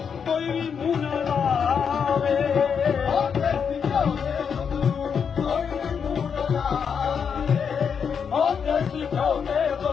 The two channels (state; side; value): quieter; right; 6.8 dB